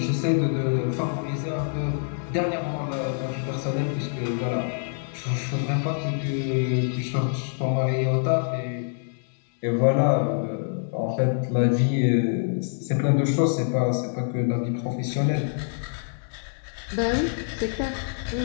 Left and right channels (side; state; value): right; silent; digital silence